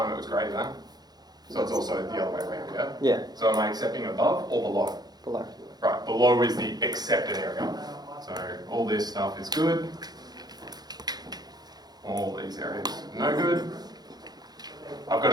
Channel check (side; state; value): left; late; 0.19 ms